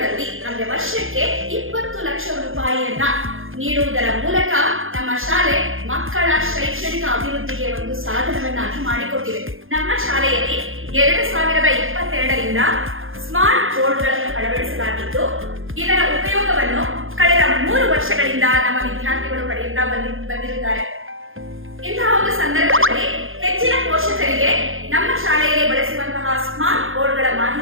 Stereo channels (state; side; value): late; left; 0.59 ms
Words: ಅಂದ್ರೆ ವರ್ಷಕ್ಕೆ 20 ಲಕ್ಷ ರೂಪಾಯಿಯನ್ನ ನೀಡುವುದರ ಮೂಲಕ ನಮ್ಮ ಶಾಲೆ ಮಕ್ಕಳ ಶೈಕ್ಷಣಿಕ ಅಭಿವೃದ್ಧಿಗೆ ಒಂದು ಸಾಧನವನ್ನಾಗಿ ಮಾಡಿಕೊಟ್ಟಿದೆ. ನಮ್ಮ ಶಾಲೆಯಲ್ಲಿ 2022ರಿಂದ ಸ್ಮಾರ್ಟ್ ಬೋರ್ಡ್ಗಳನ್ನು ಅಳವಡಿಸಲಾಗಿದ್ದು, ಇದರ ಉಪಯೋಗವನ್ನು ಕಳೆದ 3 ವರ್ಷಗಳಿಂದ ನಮ್ಮ ವಿದ್ಯಾರ್ಥಿಗಳು ಪಡೆಯುತ್ತಾ ಬಂದಿರುತ್ತಾರೆ. ಇಂತಹ ಒಂದು ಸಂದರ್ಭದಲ್ಲಿ ಹೆಚ್ಚಿನ ಪೋಷಕರಿಗೆ ನಮ್ಮ ಶಾಲೆಯಲ್ಲಿ ಬಳಸುವಂತಹ ಸ್ಮಾರ್ಟ್ ಬೋರ್ಡ್ಗಳ